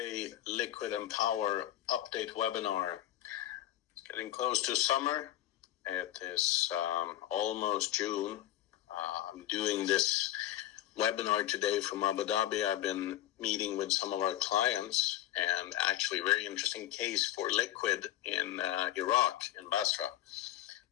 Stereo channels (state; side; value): quieter; right; 13.4 dB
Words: Liquid and Power update webinar. It's getting close to summer. It is almost June. I'm doing this webinar today from Abu Dhabi. I've been meeting with some of our clients and actually very interesting case for liquid in Iraq, in Basra.